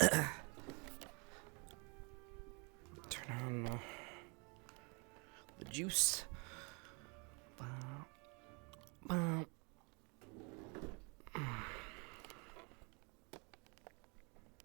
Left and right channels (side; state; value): left; quieter; 32.1 dB